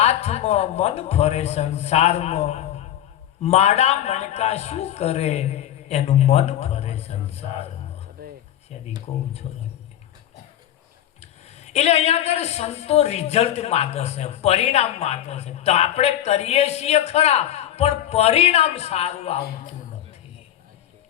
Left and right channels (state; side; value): quieter; right; 11.5 dB